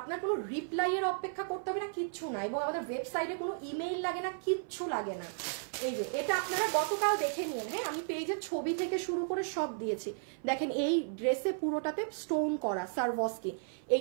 কোনো রিপ্লাই এর অপেক্ষা করতে হবে না, কিচ্ছু না। এবং আমাদের ওয়েবসাইটে কোনো ইমেইল লাগে না, কিচ্ছু লাগে না। এই যে এটা আপনারা গতকাল দেখে নিন। হ্যাঁ, আমি পেজের ছবি থেকে শুরু করে সব দিয়েছি। দেখেন এই ড্রেসে পুরোটাতে স্টোন করা সারভস্কি,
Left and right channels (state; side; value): silent; left; 55 dB below the other